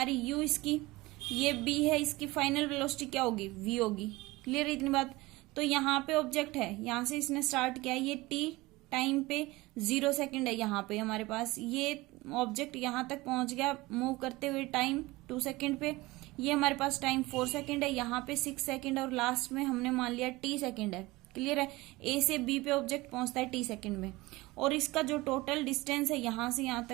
u इसकी, ये b है, इसकी फाइनल वेलोसिटी क्या होगी, v होगी। क्लियर इतनी बात। तो यहाँ पे ऑब्जेक्ट है, यहां से इसने स्टार्ट किया, ये t टाइम पे 0 सेकंड है यहाँ पे हमारे पास, ये ऑब्जेक्ट यहां तक पहुंच गया मूव करते हुए टाइम 2 सेकंड पे, ये हमारे पास टाइम 4 सेकंड है, यहाँ पे 6 सेकंड, और लास्ट में हमने मान लिया t सेकंड है। क्लियर है, ए से बी पे ऑब्जेक्ट पहुंचता है t सेकंड में, और इसका जो टोटल डिस्टेंस है यहां से यहां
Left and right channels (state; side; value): quieter; left; 20.7 dB